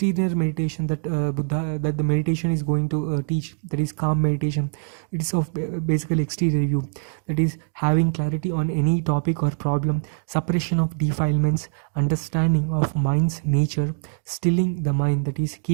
meditation that Buddha, that the meditation is going to teach, that is calm meditation. It is of basically exterior view, that is having clarity on any topic or problem, suppression of defilements, understanding of mind's nature, stilling the mind, that is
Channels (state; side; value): silent; left; digital silence